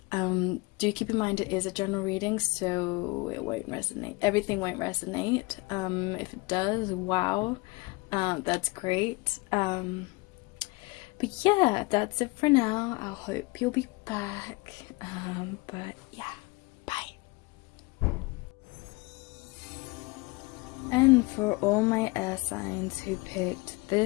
Do keep in mind it is a general reading, so it won't resonate. Everything won't resonate. If it does, wow, that's great. But yeah, that's it for now. I hope you'll be back. But yeah, bye. And for all my air signs who picked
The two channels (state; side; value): quieter; right; 24.8 dB